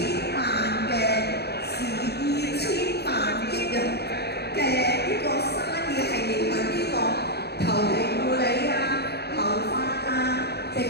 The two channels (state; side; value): late; right; 0.48 ms